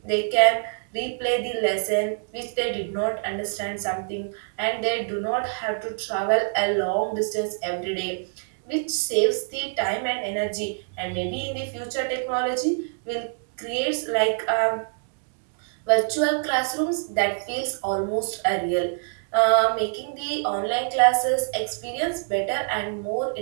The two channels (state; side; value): silent; left; digital silence